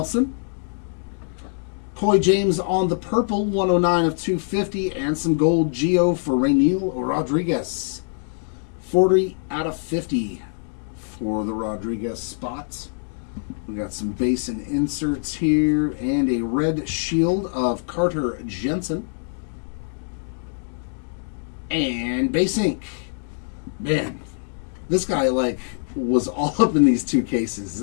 Coy James on the purple, 109 of 250, and some gold Gio for Rainiel Rodriguez. 40 out of 50 for the Rodriguez spots. We got some base and inserts here, and a red shield of Carter Jensen. And base ink. Man, this guy was all up in these two cases. Is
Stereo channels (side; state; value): right; silent; digital silence